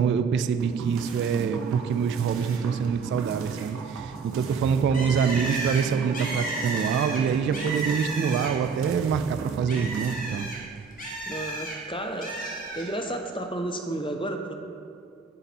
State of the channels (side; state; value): left; quieter; 5.6 dB